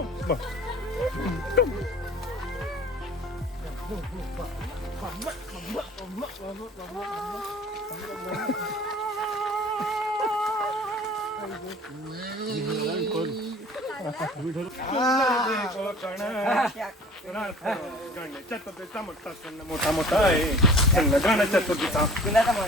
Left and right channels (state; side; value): normal; both; correlation 0.46